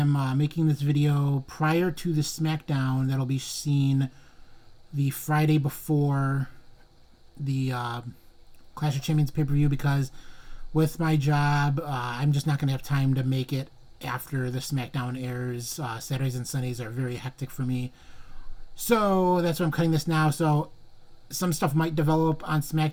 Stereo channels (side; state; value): both; identical; correlation 1.00